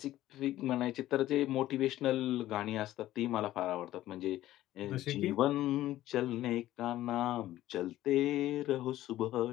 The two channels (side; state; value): right; quieter; 14.5 dB